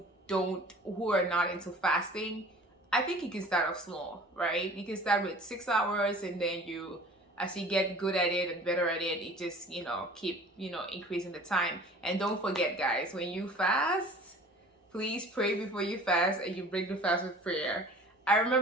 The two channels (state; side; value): normal; both; correlation 0.46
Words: are not into fasting, I think you can start off small, right? You can start with 6 hours and then you as you get good at it and better at it, it just, keep, increasing the time. And don't forget, guys, when you fast, please pray before you fast, and you break the fast with prayer. I